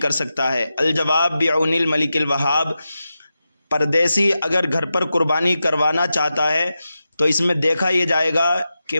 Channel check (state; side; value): inverted; both; correlation -0.91